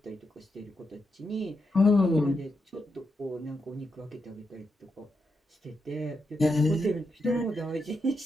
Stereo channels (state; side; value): normal; both; correlation 0.84